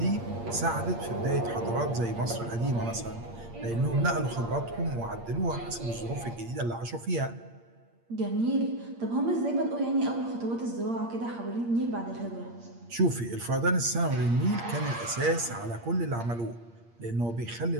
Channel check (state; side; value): late; left; 8.6 ms